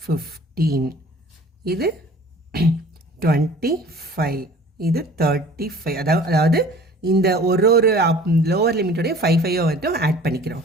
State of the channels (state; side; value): normal; both; correlation 0.48